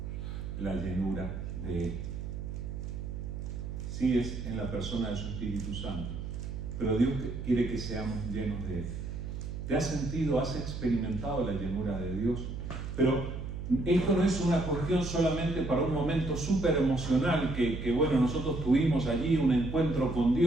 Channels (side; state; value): right; noise; hum, 6 dB below the sound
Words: la llenura de Él. Sí, es en la persona de su Espíritu Santo, pero Dios quiere que seamos llenos de Él. ¿Te has sentido, has experimentado la llenura de Dios? Pero esto no es una cuestión solamente para un momento súper emocional que bueno, nosotros tuvimos allí un encuentro con